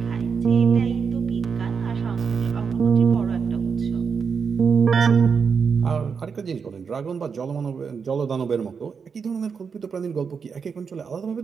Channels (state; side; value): quieter; left; 6.0 dB